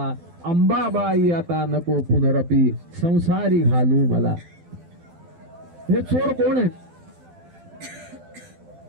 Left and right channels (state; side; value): late; left; 12 ms